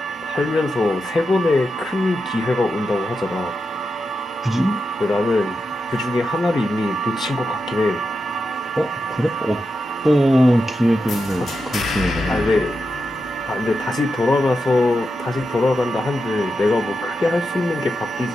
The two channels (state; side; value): normal; both; correlation 0.88